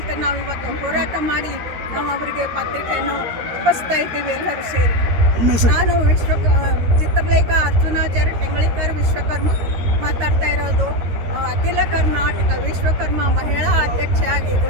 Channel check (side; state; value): left; late; 13 ms